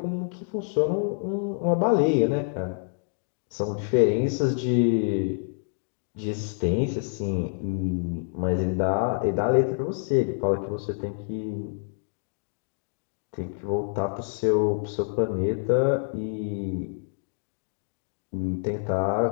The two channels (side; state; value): right; silent; digital silence